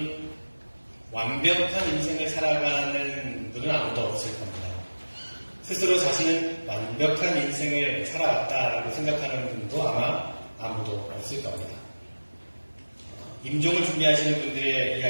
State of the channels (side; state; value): both; inverted; correlation -1.00